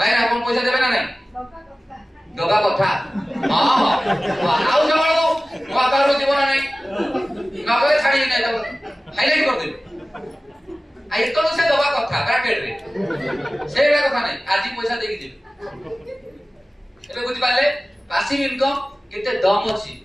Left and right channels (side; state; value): both; normal; correlation 0.97